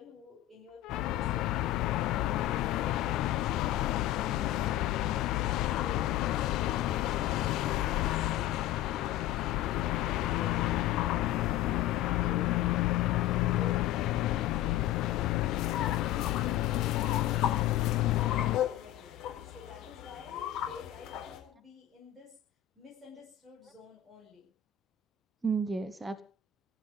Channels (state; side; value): quieter; right; 12.4 dB